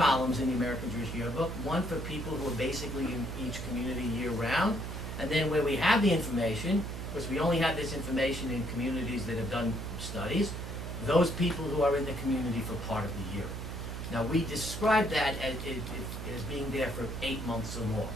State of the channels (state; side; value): noise; right; hum, 6 dB below the sound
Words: in the American Jewish Yearbook, one for people who are basically in each community year-round, and then where we have the information, because we only have this information in communities that have done studies, those people who are in the community for part of the year. Now we describe that as being there for 8 months or more.